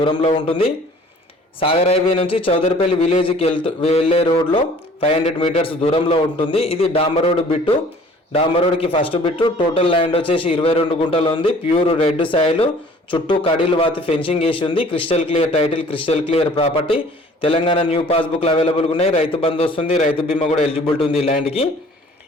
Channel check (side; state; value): both; normal; correlation 0.52